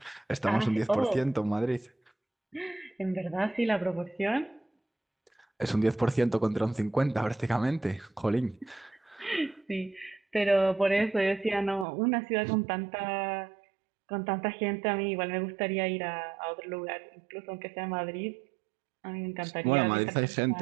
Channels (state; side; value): drops out; left; at 11.9 s